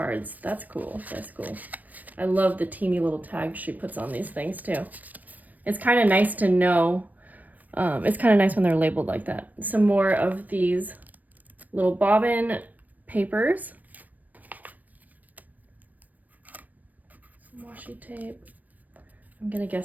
That's cool. That's cool. I love the teeny little tags she puts on these things too. It's kind of nice to know. It's kind of nice when they're labeled like that. Some more of these little bobbin papers. Washi tape. I'm gonna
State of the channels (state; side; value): late; left; 0.082 ms